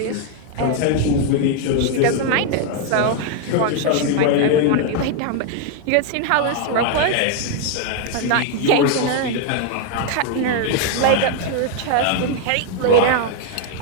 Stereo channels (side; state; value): both; different; correlation 0.00